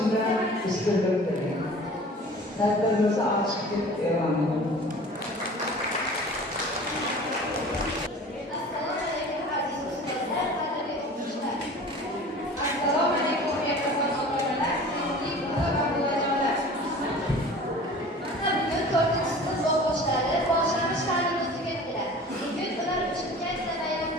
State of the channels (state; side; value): normal; both; correlation 0.42